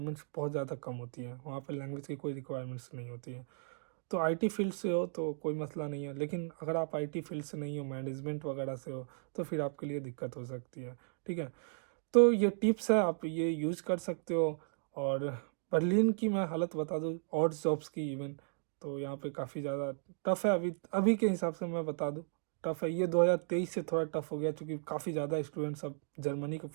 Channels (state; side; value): silent; left; digital silence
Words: बहुत ज़्यादा कम होती है, वहाँ पे लैंग्वेज की कोई रिक्वायरमेंट्स नहीं होती है। तो आईटी फील्ड से हो तो कोई मसला नहीं है, लेकिन अगर आप आईटी फील्ड से नहीं हो, मैनेजमेंट वगैरह से हो, तो फिर आपके लिए दिक्कत हो सकती है, ठीक है। तो ये टिप्स है, आप ये यूज़ कर सकते हो। और बर्लिन की मैं हालत बता दूँ, और जॉब्स की इवन, तो यहाँ पे काफ़ी ज़्यादा टफ है अभी अभी के हिसाब से मैं बता दूँ, टफ है। ये 2023 से थोड़ा टफ हो गया, क्योंकि काफ़ी ज़्यादा स्टूडेंट्स अब जर्मनी को